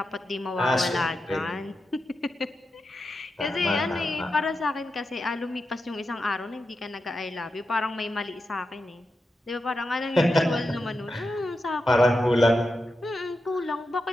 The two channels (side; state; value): both; normal; correlation 0.89